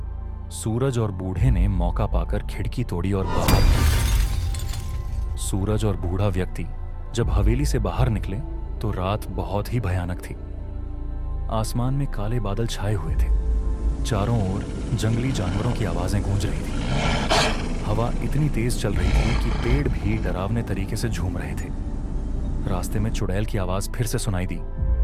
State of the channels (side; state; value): both; identical; correlation 1.00